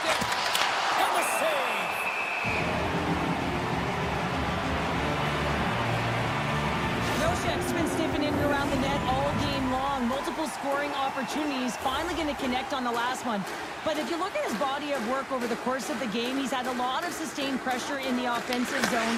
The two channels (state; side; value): identical; both; correlation 1.00